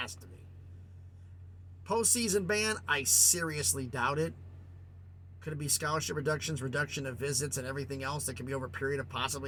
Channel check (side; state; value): both; identical; correlation 1.00